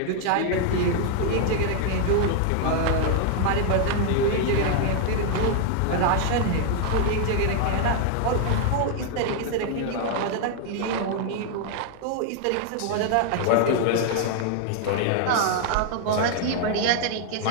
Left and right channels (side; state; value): both; different; correlation 0.00